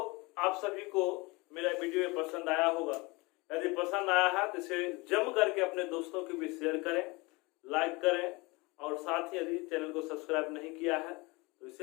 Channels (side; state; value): right; quieter; 25.3 dB